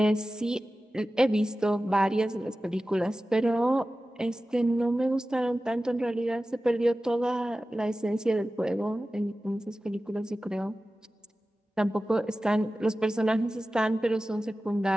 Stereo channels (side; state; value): both; normal; correlation 0.95